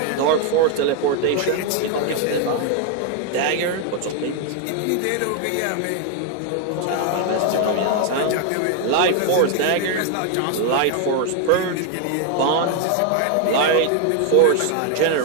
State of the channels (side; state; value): both; different; correlation 0.00